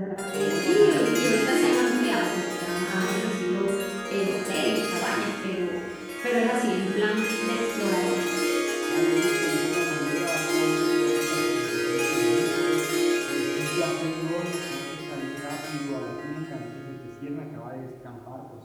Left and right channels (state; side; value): identical; both; correlation 1.00